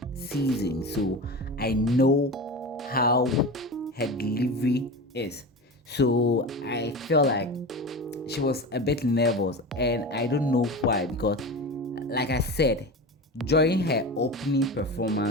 season, so I know how her delivery is. So I feel like she was a bit nervous, and I don't know why, because like I said, during her opening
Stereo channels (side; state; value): both; normal; correlation 0.28